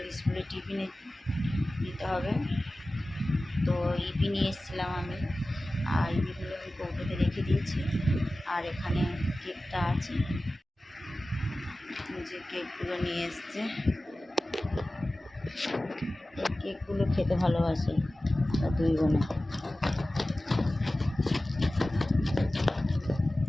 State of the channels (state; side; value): normal; both; correlation 0.96